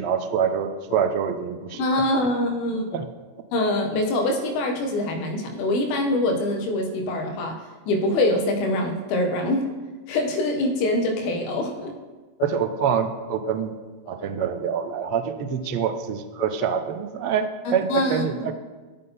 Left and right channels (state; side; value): late; right; 24 ms